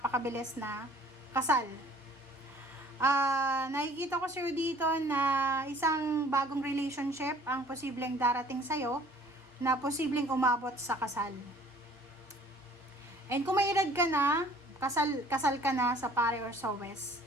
na kasal. Nakikita ko sa'yo dito na isang bagong relationship ang posibleng darating sa'yo na posibleng umabot sa kasal. And kung may edad ka na, kasal ka na sa pare or sa west,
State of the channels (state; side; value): normal; both; correlation 0.54